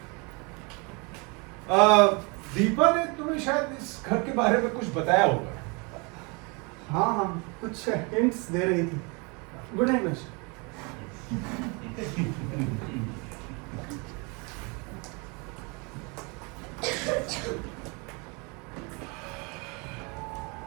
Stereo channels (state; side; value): quieter; left; 30.5 dB